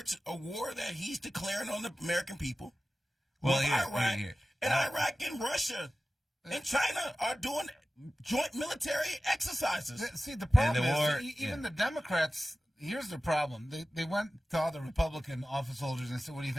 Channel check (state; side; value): normal; both; correlation 0.95